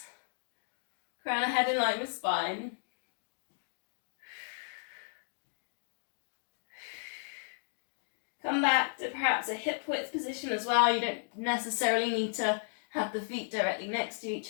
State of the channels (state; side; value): silent; right; digital silence